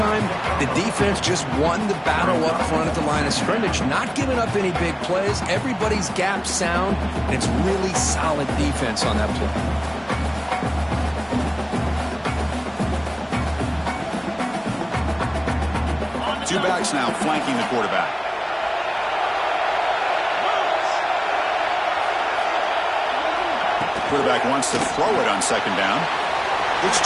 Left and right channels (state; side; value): identical; both; correlation 1.00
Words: the defense just won the battle up front at the line of scrimmage, not giving up any big plays. Everybody's gap sound, and it's really solid defense on that play. Two backs now flanking the quarterback. Quarterback wants to throw it on 2nd down. Looks